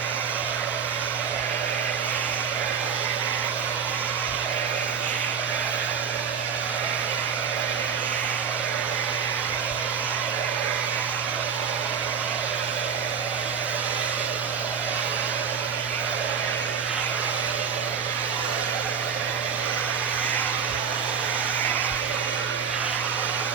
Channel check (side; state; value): left; quieter; 6.9 dB